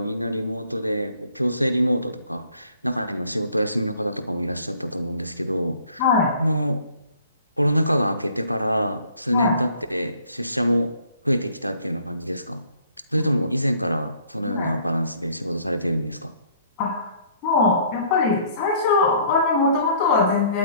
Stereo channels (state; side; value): inverted; both; correlation -0.59